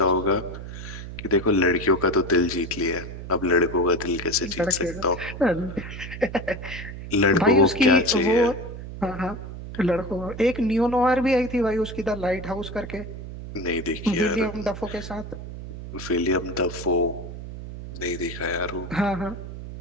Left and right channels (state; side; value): noise; right; hum, 10 dB below the sound